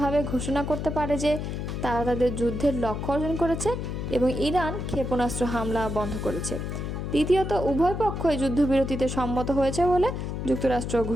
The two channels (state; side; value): noise; left; hum, 4 dB below the sound